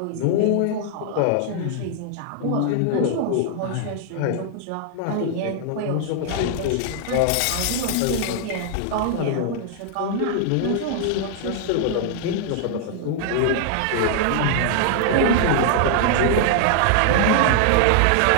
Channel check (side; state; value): both; different; correlation -0.01